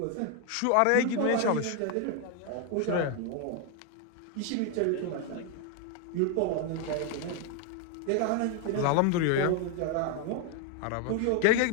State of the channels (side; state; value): both; different; correlation 0.01